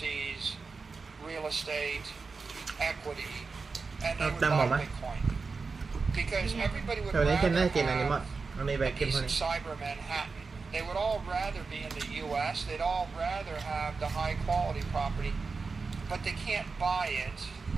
real estate, equity, and they would buy Bitcoin. Because everybody would rather have a piece of cyber Manhattan. They would all rather be in the U.S. They'd all rather have the high quality property, but they can't buy it.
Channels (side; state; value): left; quieter; 4.5 dB